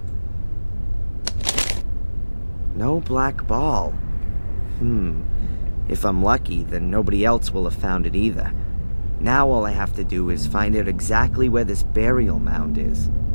No black ball. If I'm lucky, then nobody else will have found it either. Now all I have to do is find out exactly where this burial mound is.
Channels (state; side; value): inverted; both; correlation -1.00